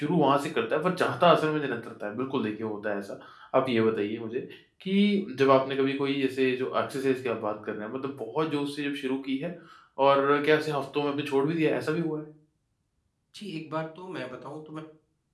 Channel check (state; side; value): identical; both; correlation 1.00